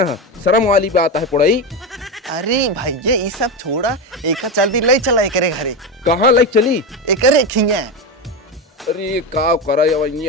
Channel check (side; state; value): both; normal; correlation 0.16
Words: हैं, शर्म वाली बात है पुड़ाई। अरे भैया ये सब छोड़ा, एक जल्दी ले चला एकरे घरे। कहाँ लाइक चली? एकरे खिंगे। अरे का करा